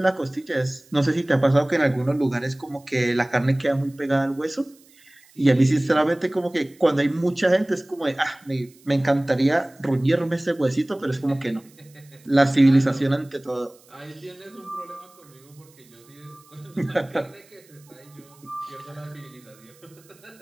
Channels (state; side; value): noise; right; hiss, 28 dB below the sound